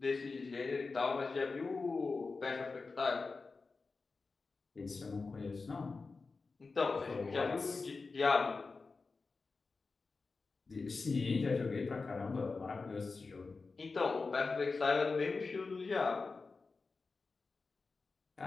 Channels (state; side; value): quieter; right; 4.2 dB